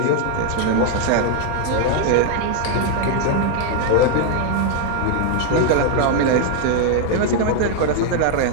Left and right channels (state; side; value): different; both; correlation 0.00